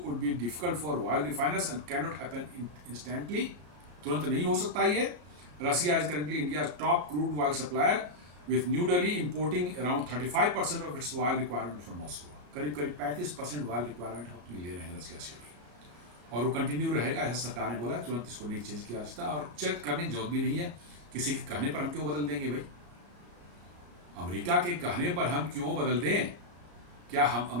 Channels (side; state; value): left; late; 34 ms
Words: be difficult for oil refiners and cannot happen instantly. तुरंत नहीं हो सकता ये। Russia is currently India's top crude oil supplier, with New Delhi importing around 35% of its oil requirement from Moscow. करीब 35% oil requirement हम ले रहे हैं रसिया से भी, और वो कंटिन्यू रहेगा, ऐसा सरकार ने बोला। तुरंत इसको नहीं चेंज किया जा सकता और चेक करने की जरूरत भी नहीं है। किसी के कहने पर हम क्यों बदल देंगे भाई? अमेरिका के कहने पर हम क्यों बदल दें? क्या हम